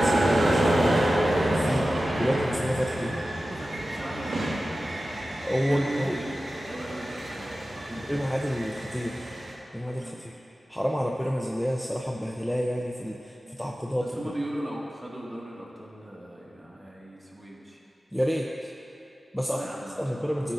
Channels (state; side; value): normal; both; correlation 0.95